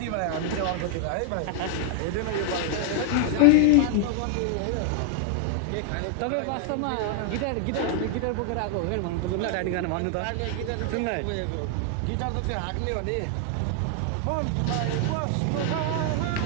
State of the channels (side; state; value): both; different; correlation 0.00